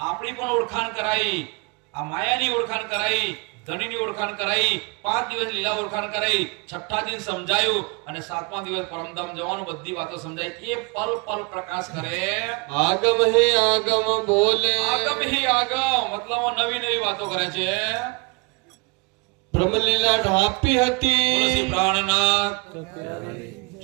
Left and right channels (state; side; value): quieter; left; 30.3 dB